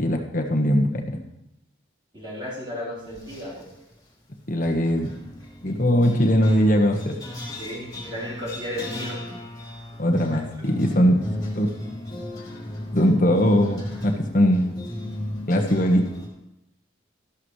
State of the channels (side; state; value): both; normal; correlation 0.77